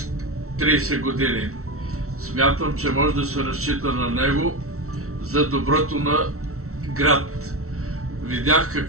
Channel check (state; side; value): late; left; 0.63 ms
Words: 30 години. Смятам, че може да се разчита на него за доброто на град. Видях